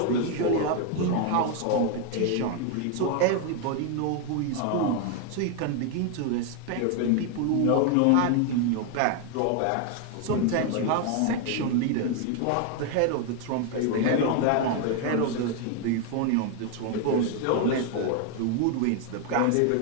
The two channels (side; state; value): both; different; correlation 0.01